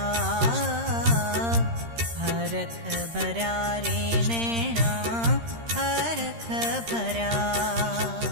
हरख भरा रे नैना हरख भरा।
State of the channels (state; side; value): late; left; 13 ms